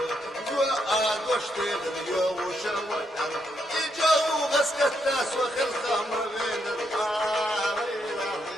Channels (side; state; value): both; normal; correlation 0.78